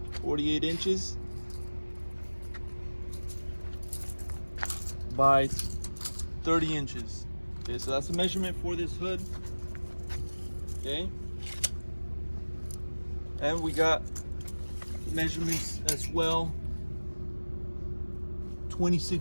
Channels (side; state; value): both; inverted; correlation -1.00